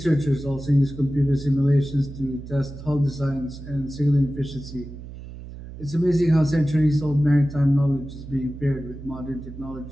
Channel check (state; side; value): noise; right; hum, 13 dB below the sound